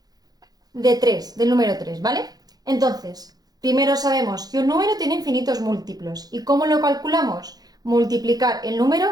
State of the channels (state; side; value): late; left; 0.19 ms